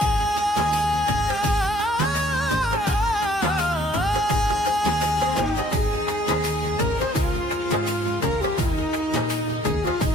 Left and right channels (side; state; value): both; normal; correlation 0.60